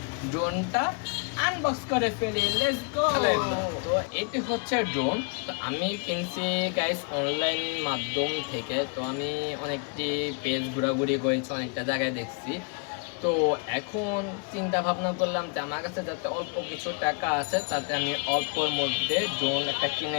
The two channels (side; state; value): right; quieter; 37.4 dB